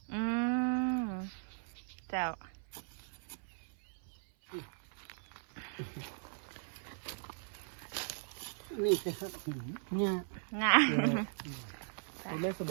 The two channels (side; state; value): left; silent; 52 dB below the other